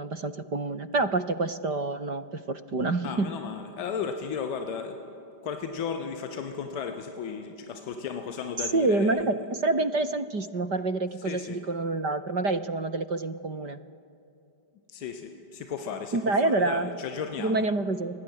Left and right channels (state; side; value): late; left; 5.1 ms